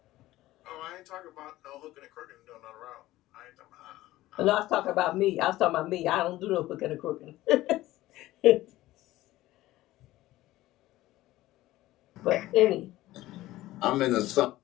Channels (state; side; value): quieter; right; 16.4 dB